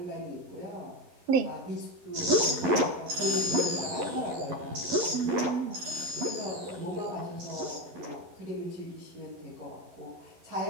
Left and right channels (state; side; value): late; left; 11 ms